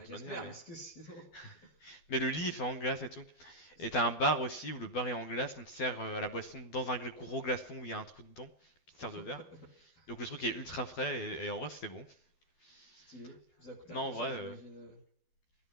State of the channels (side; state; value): right; late; 12 ms